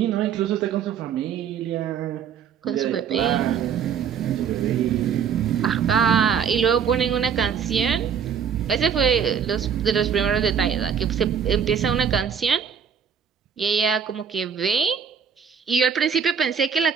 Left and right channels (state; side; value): quieter; left; 7.4 dB